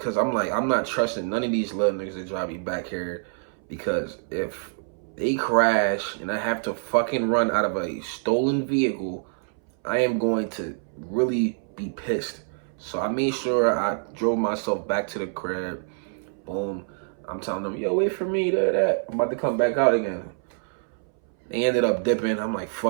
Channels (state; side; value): silent; left; 61 dB below the other